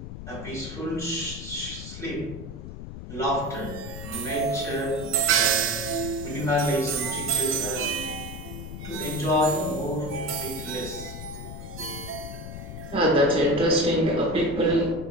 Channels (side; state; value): left; noise; rumble, 10 dB below the sound